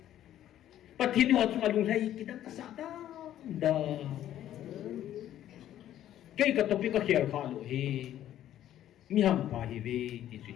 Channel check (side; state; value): right; quieter; 12.0 dB